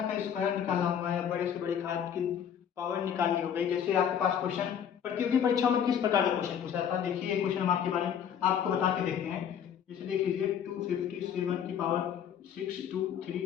का स्क्वायर निकालना हुआ है, बड़े से बड़े घात की पावर निकालनी हो गई, जैसे आपके पास क्वेश्चन प्रतियोगी परीक्षाओं में किस प्रकार का क्वेश्चन पूछा था, देखिए ये क्वेश्चन हम आपके बारे में आपको बता के देखते हैं। जैसे देख लीजिए 257 की पावर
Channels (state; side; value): quieter; right; 8.6 dB